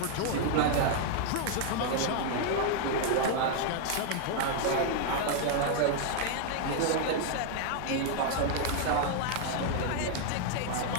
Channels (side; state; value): both; different; correlation 0.00